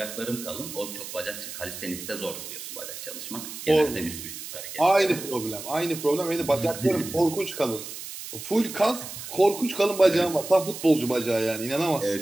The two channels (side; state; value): right; noise; hiss, 10 dB below the sound